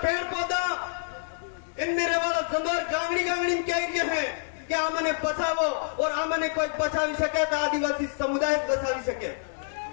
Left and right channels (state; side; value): silent; right; digital silence